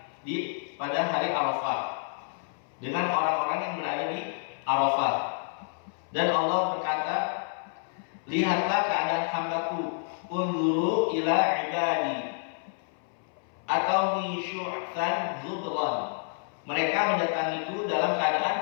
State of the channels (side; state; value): right; silent; 59 dB below the other